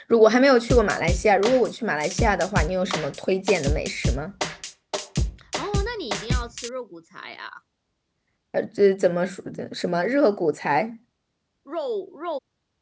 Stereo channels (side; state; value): both; identical; correlation 1.00